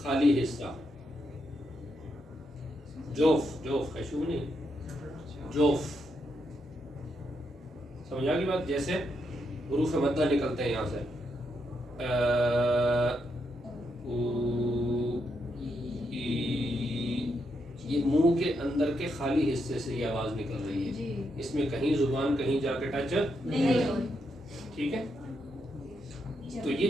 خالی حصہ. جوف، خیشوم نہیں، جوف. سمجھ آ گئی بات؟ جیسے حروف مدہ نکلتے ہیں یہاں سے، یہ منہ کے اندر کے خالی حصے سے یہ آواز نکل رہی ہے. اس میں کہیں زبان کہیں جا کے ٹچ نہیں. ٹھیک ہے، تو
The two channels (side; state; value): both; normal; correlation 0.81